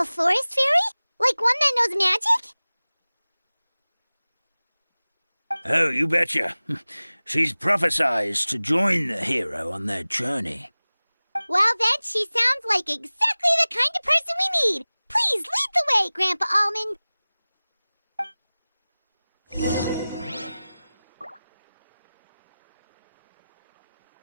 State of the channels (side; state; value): both; inverted; correlation -0.98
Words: forest fairy? Like one that knows magic? Oh, you betcha. She's prophesized to join the hero on their journey. Well, then she sounds like exactly the kind of person we need. Please lead the way, Grandpa Almond.